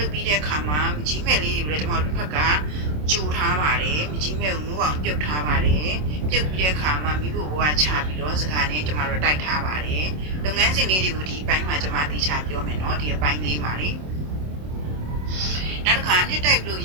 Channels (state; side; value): late; left; 27 ms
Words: ုပ်ပြီးတဲ့အခါမှာမကြီးမဲ့လေးတွေကိုလည်းကျမတို့တစ်ဖက်ကကြိုထားပါတယ်မကြီးမဲ့ကိုနိုးအောင်ပြုတ်ထားပါတယ်ပြုတ်ပြီးတဲ့အခါမှာမိဖို့ဘဝချပြီးတော့စကားနဲ့ကျမတို့တိုက်ထားပါတယ်လုပ်ငန်းစဉ်လေးတွေကိုဒီအပိုင်းမှာကျမတိချပြောမယ်နော်ဒီအပိုင်းလေးမှာလေနောက်တစ်ခါနှစ်တိုက်လို့